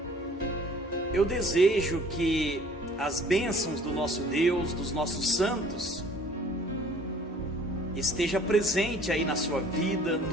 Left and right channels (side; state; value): both; normal; correlation 0.53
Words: Eu desejo que as bênçãos do nosso Deus, dos nossos santos, esteja presente aí na sua vida,